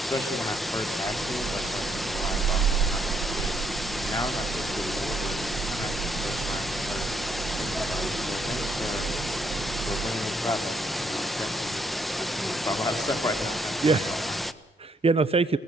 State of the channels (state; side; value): normal; both; correlation 0.73